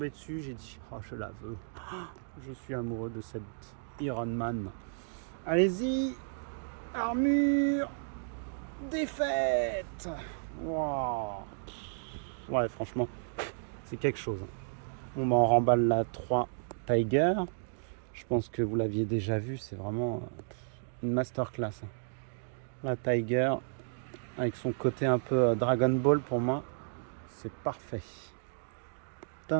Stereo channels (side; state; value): left; silent; digital silence